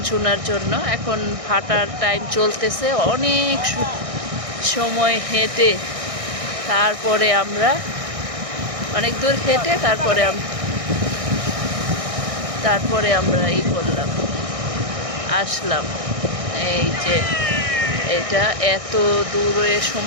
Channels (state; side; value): late; left; 1.6 ms